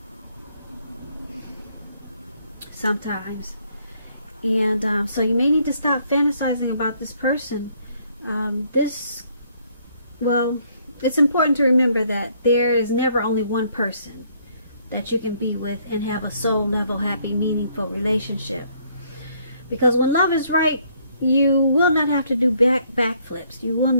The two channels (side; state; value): both; inverted; correlation -0.67